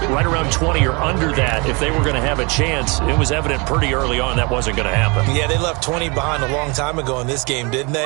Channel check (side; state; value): left; quieter; 29.2 dB